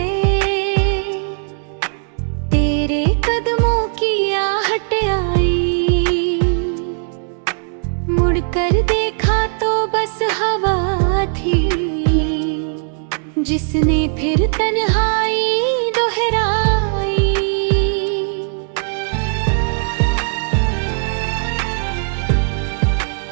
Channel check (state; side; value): silent; left; digital silence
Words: तेरे कदमों की आहट आई, मुड़कर देखा तो बस हवा थी जिसने फिर तन्हाई दोहराई।